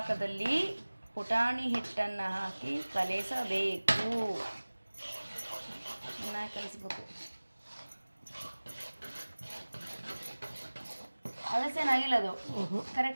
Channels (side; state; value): both; inverted; correlation -1.00